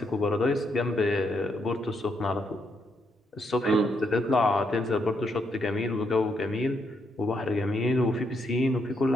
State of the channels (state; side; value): normal; both; correlation 0.77